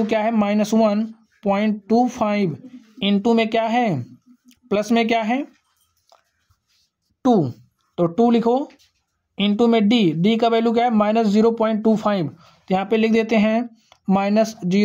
क्या है, -1.25 इंटू में क्या है, प्लस में क्या है 2, तो 2 लिखो, इंटू में d का वैल्यू क्या है, -0.25, तो यहाँ पे लिख देते हैं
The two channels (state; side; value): identical; both; correlation 1.00